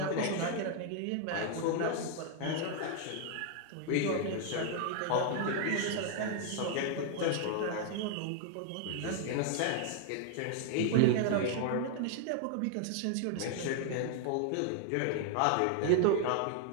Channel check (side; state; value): both; different; correlation 0.00